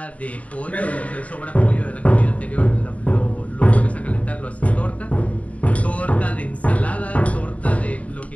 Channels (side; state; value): right; late; 0.068 ms